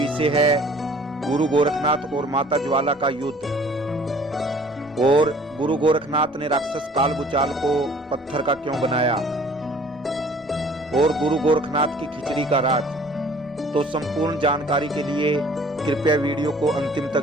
है गुरु गोरखनाथ और माता ज्वाला का युद्ध। और गुरु गोरखनाथ ने राक्षस कालभुचाल को पत्थर का क्यों बनाया, और गुरु गोरखनाथ की खिचड़ी का राज। तो संपूर्ण जानकारी के लिए कृपया वीडियो को अंतिम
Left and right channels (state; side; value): normal; both; correlation 0.53